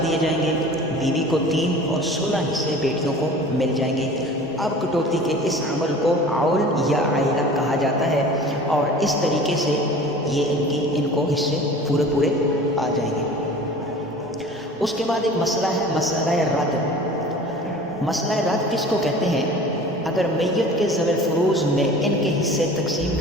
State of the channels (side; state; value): both; normal; correlation 0.42